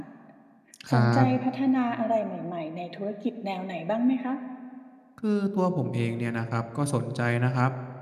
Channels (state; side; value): identical; both; correlation 1.00